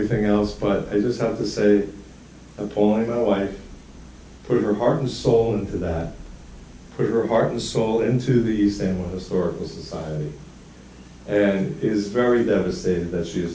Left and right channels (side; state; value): both; identical; correlation 1.00